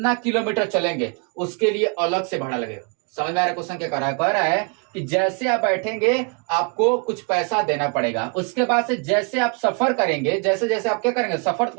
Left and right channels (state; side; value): quieter; left; 36.0 dB